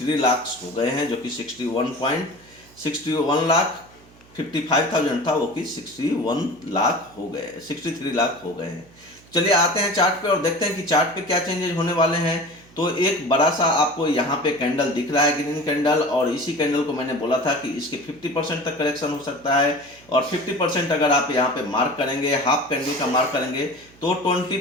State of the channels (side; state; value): right; noise; hum, 26 dB below the sound